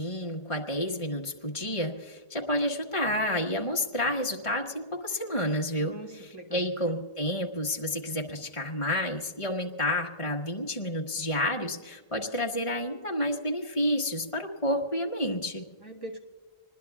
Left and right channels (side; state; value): right; late; 1.5 ms